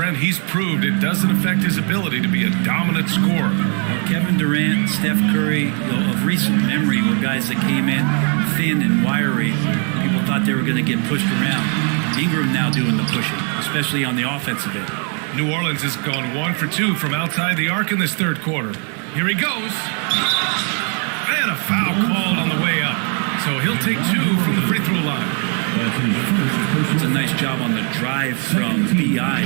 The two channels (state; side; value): quieter; left; 39.6 dB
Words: he's proved it doesn't affect his ability to be a dominant scorer. Kevin Durant, Steph Curry, of recent memory, were guys that came in thin and wiry. People thought they were going to get pushed around. Ingram now doing the pushing, especially on the offensive end. New Orleans has gone 1 for 2 from outside the arc in this third quarter. Here he goes. And a foul called on the way up. So he'll take 2 from the free throw line. It's a nice job on the drive from B.I.,